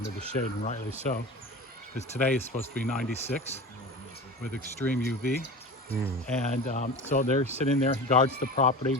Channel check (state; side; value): normal; both; correlation 0.32